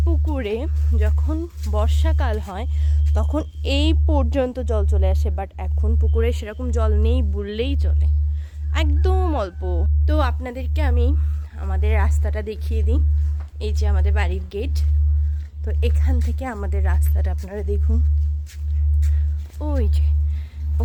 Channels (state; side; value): identical; both; correlation 1.00